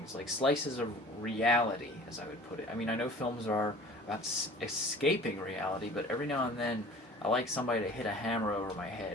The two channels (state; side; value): normal; both; correlation 0.45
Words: like slices of reality, as I would put it. I mean, I know films are about escaping reality, but every now and then I like somebody to hit a hammer over my head